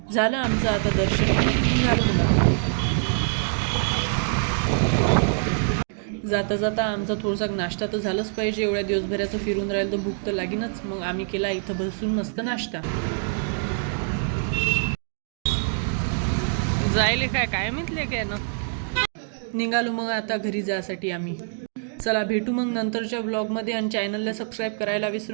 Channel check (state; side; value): silent; left; 62 dB below the other